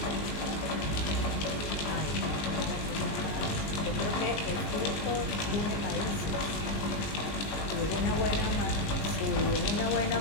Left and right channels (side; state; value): right; late; 20 ms